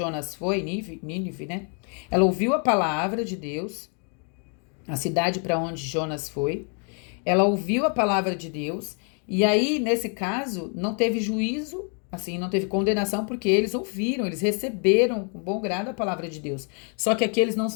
foi, Nínive, né? Ela ouviu a palavra de Deus, a cidade para onde Jonas foi. Ela ouviu a palavra de Deus, e aí, nesse caso, não teve juízo, assim, não teve condenação, porque eles ouviram, eles receberam com bom grado a palavra de Deus. Só que aqui eles não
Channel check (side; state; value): right; quieter; 39.6 dB